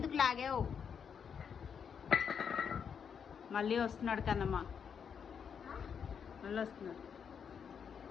లాగావు? మళ్ళీ వస్తున్నాడు కన్నమ్మ, మళ్ళీ వస్తున్నాడు.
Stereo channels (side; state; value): right; quieter; 7.1 dB